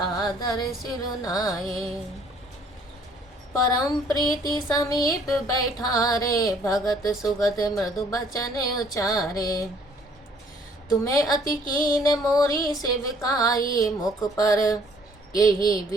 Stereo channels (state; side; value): normal; both; correlation 0.60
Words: सिरुनाए। परम प्रीति समीप बैठारे, भगत सुगत मृदु बचन उचारे। तुम्हें अति कीन मोरी सेविकाई, मुख पर यही